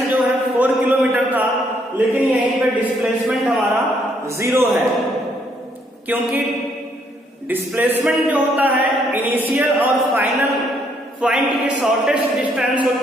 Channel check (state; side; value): normal; both; correlation 0.70